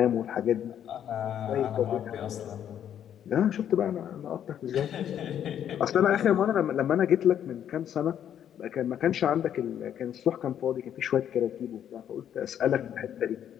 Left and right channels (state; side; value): quieter; right; 9.8 dB